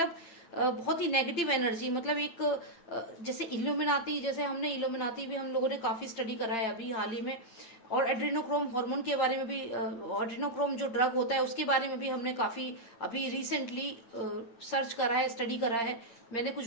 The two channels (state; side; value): late; right; 9.1 ms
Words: बहुत ही नेगेटिव एनर्जी, मतलब एक जैसे इल्यूमिनाती, जैसे हमने इल्यूमिनाती भी हम लोगों ने काफी स्टडी करा है अभी हाल ही में, और एड्रेनोक्रोम हार्मोन के बारे में भी, एड्रेनोक्रोम जो ड्रग होता है उसके बारे में भी हमने काफी अभी रिसेंटली सर्च करा है, स्टडी करा है। मैंने कुछ